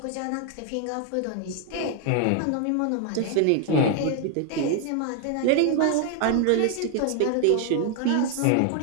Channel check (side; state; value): both; different; correlation 0.00